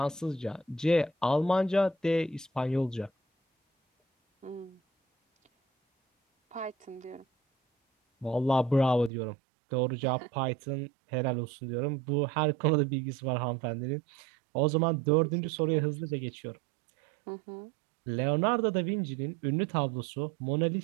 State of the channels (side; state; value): left; drops out; at 9.1 s